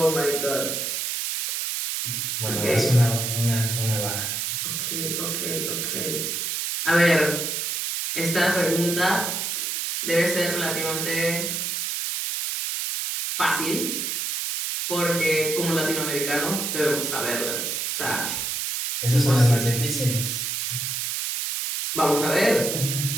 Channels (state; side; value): noise; right; hiss, 2 dB below the sound